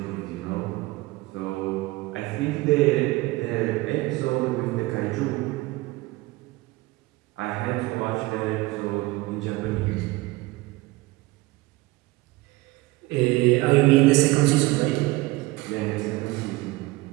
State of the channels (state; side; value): quieter; left; 20.7 dB